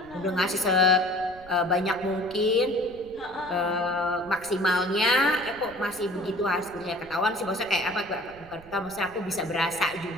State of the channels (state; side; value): noise; right; rumble, 22 dB below the sound